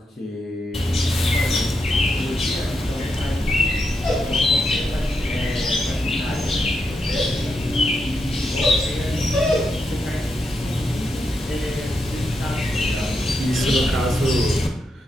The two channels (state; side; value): normal; both; correlation 0.83